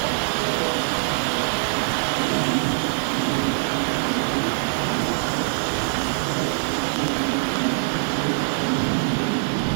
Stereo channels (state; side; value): silent; left; digital silence